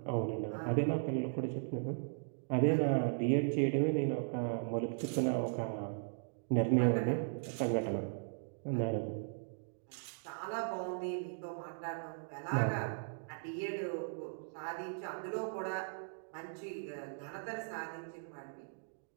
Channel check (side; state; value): left; silent; digital silence